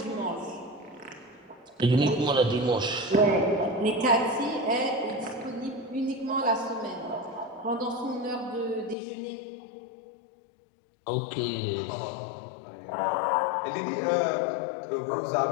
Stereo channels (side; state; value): right; drops out; at 9.0 s